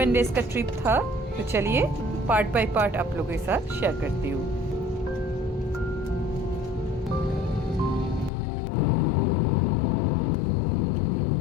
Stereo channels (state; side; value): drops out; right; at 8.3 s